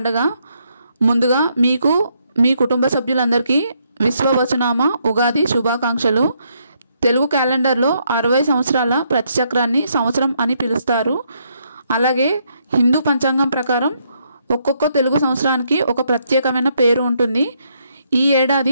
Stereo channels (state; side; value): inverted; both; correlation -0.74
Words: ముందుగా మీకు మీ కుటుంబ సభ్యులందరికీ విశ్వవసునామ ఉగాది శుభాకాంక్షలు. తెలుగు క్యాలెండర్లో 60 సంవత్సరాల ప్రతిచక్రాన్ని సంవత్సరం అని పిలుస్తారు. అలాగే హిందూ పంచాంగం ప్రకారం ఒక్కొక్క తెలుగు సంవత్సరానికి ఒక ప్రత్యేకమైన పేరు ఉంటుంది. ఈ ఏడాది